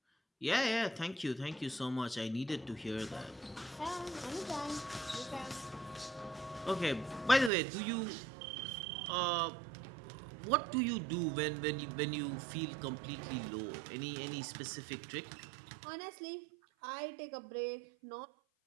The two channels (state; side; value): drops out; left; at 7.5 s